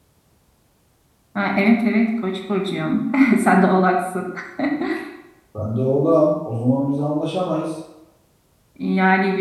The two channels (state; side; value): identical; both; correlation 1.00